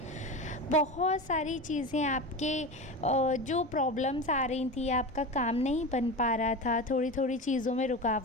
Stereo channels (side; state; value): both; normal; correlation 0.26